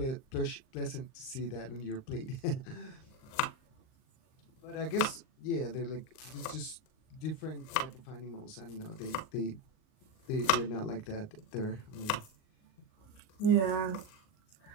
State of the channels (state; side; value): late; right; 38 ms